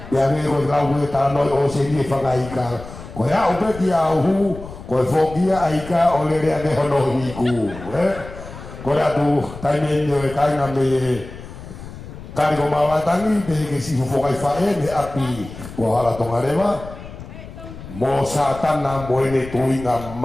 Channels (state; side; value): noise; left; rumble, 14 dB below the sound